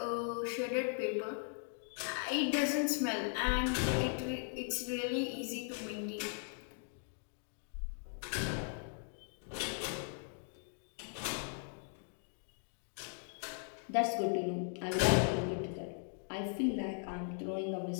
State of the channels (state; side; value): silent; right; 52 dB below the other